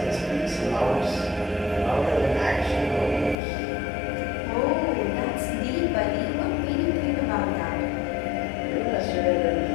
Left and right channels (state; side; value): drops out; right; at 3.4 s